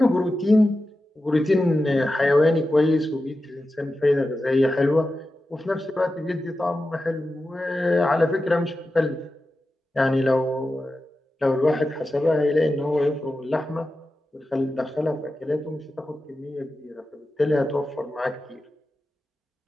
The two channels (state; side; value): normal; both; correlation 0.92